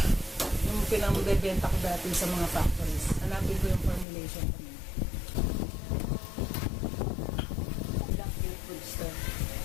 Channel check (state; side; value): drops out; right; at 4.0 s